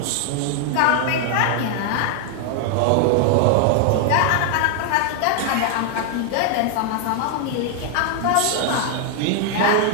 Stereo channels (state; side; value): different; both; correlation 0.00